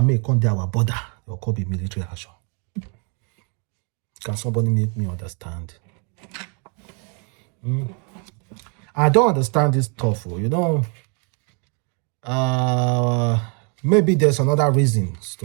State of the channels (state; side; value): quieter; left; 37.3 dB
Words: may come to our border? There could be military action. Can somebody make me understand? I don't understand this stuff. Maybe there's another reason